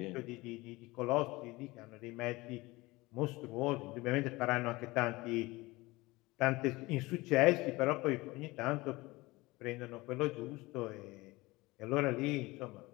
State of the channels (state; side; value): quieter; right; 21.4 dB